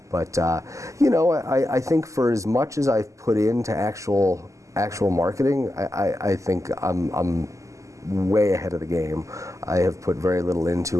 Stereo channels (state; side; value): late; left; 0.16 ms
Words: But I think for as much as I've put into actual actual marketing, I think I'm way ahead of the game. I have put very little